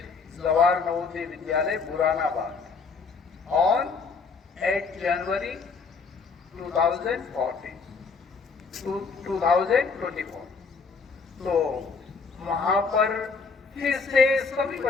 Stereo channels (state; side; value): quieter; right; 4.9 dB